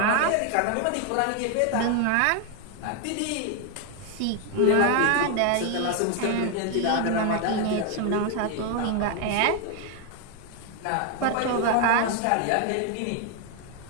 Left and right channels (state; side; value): different; both; correlation 0.01